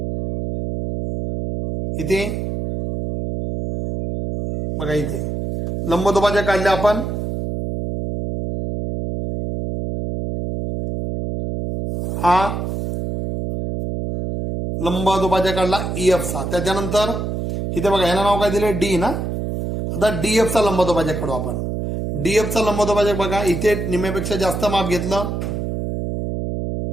इथे बघा इथे लंबदुभाजक काढले आपण. हा लंबदुभाजक काढला ई एफ चा. त्याच्यानंतर इथे बघा ह्याला नाव काय दिले, डी ना. आता डी एफ चा लंबदुभाजक काढू आपण. डी एफ चा लंबदुभाजक बघा इथे निम्म्यापेक्षा जास्त माप घेतलं,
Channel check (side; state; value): right; noise; hum, 3 dB below the sound